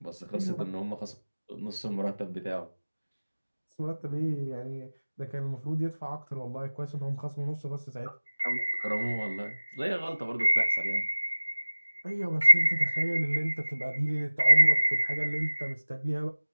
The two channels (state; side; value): inverted; both; correlation -1.00